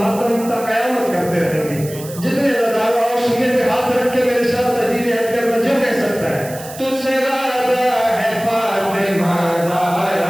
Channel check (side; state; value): right; noise; hiss, 15 dB below the sound